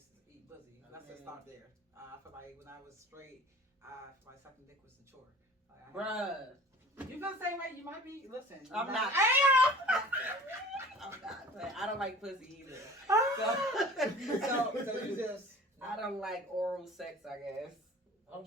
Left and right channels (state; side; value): normal; both; correlation 0.44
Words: eat pussy. Let's just start there. I feel like when I was straight, I feel like sucking dick was a chore. Like, Bruh. You feel the same way? You might be. Listen. I'm not. I'm not. But I don't like pussy either. So you just. I don't like oral sex, I guess. Oh,